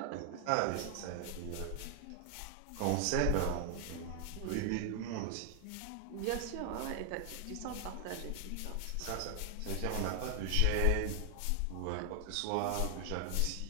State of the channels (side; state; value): both; different; correlation 0.00